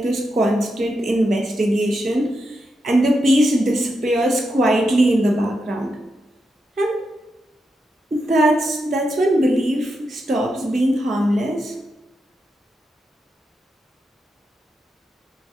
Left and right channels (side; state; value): both; normal; correlation 0.85